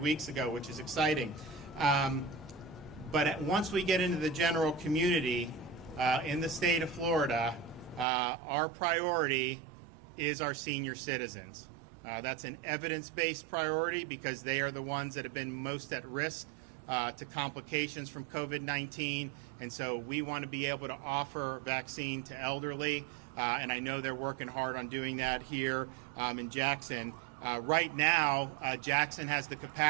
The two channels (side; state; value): left; drops out; at 8.1 s